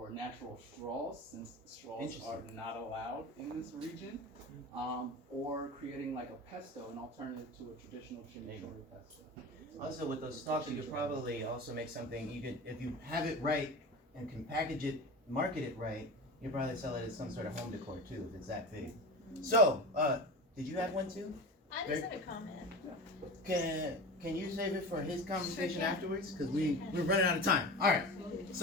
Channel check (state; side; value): normal; both; correlation 0.30